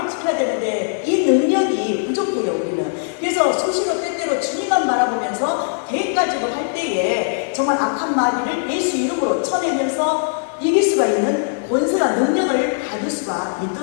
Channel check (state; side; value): silent; right; 62 dB below the other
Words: 지켜야 되는데 이 능력이 부족해요. 우리는. 그래서 수시로 때때로 주님만 바라보면서 계획가지고 할 때에 정말 악한 마귀를 예수 이름으로 쳐내면서 이길 수가 있는 권세와 능력을 받을 수가